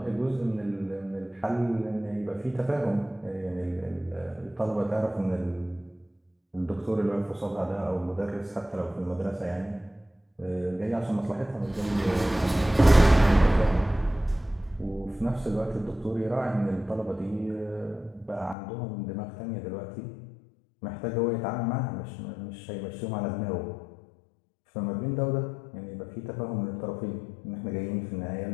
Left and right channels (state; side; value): drops out; right; at 18.6 s